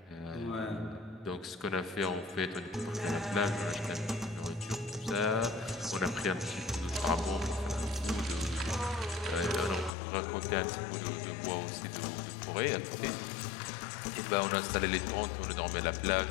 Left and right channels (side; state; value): right; drops out; at 9.9 s